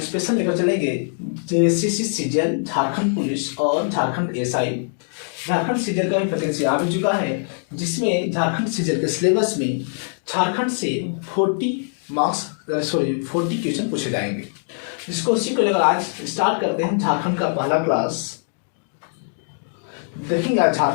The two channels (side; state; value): right; silent; 64 dB below the other